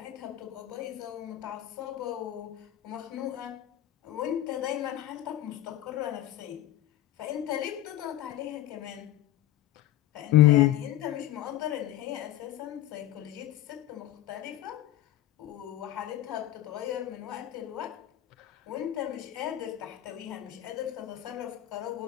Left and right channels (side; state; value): right; quieter; 13.5 dB